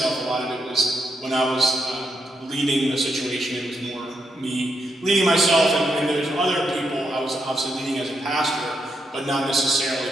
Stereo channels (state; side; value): normal; both; correlation 0.81